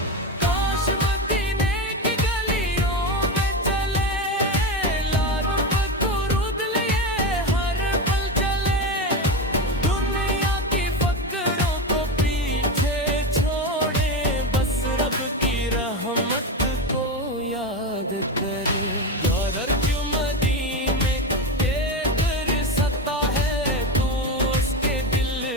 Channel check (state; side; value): normal; both; correlation 0.18